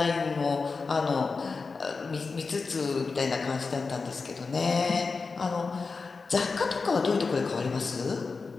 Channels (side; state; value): right; quieter; 4.5 dB